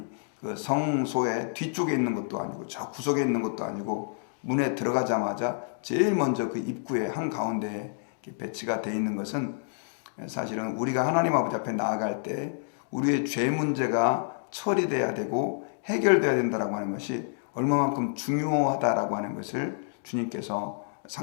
그 성소의 뒤쪽에 있는 것도 아니고 저 구석에 있는 것도 아니고 문에 들어가자마자 제일 먼저 그 입구의 한가운데에 배치가 되어 있는 것은 사실은 우리가 하나님 아버지 앞에 나아갈 때 우리의 죄 문제가 처리돼야 되고 해결돼야 된다라고 하는 것이 얼마만큼 중요하다라고 하는 것을 주님께서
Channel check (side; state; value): right; silent; digital silence